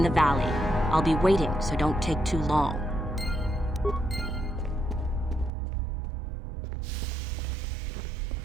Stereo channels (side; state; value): left; drops out; at 5.5 s